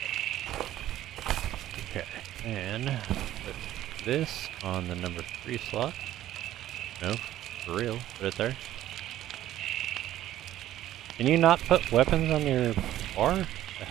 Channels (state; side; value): quieter; left; 13.2 dB